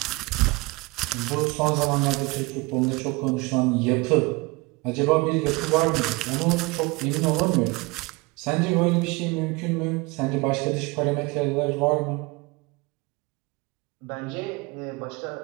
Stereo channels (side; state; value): left; quieter; 25.5 dB